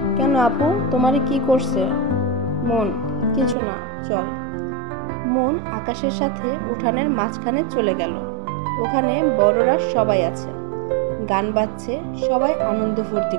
কেন আপু, তোমার কি করছে? মন, কিছু না, চল। মন আকাশের সাথে উঠানের মাঝখানে চলে গেল। ওখানে বড়রা সবাই আছে, গান বাজছে, সবাই আনন্দ ফুর্তি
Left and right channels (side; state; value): left; drops out; at 3.6 s